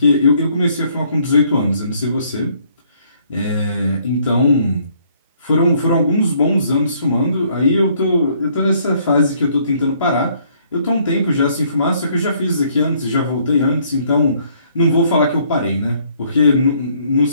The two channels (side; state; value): both; inverted; correlation -0.65